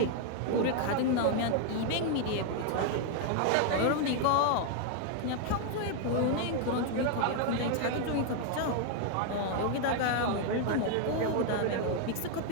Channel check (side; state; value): both; different; correlation 0.00